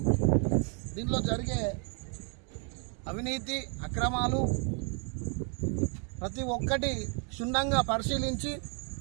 దీంట్లో జరిగే అవినీతి అక్రమాలు ప్రతి ఒక్కటి క్షుణ్ణంగా పరిశీలించి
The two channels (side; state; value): left; quieter; 38.7 dB